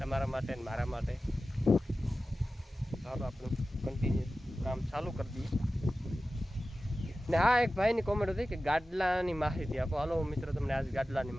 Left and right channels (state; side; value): normal; both; correlation 0.95